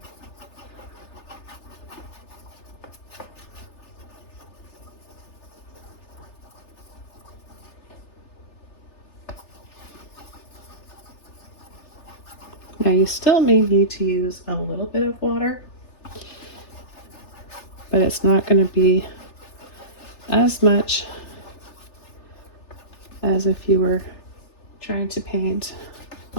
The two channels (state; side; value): late; right; 3.4 ms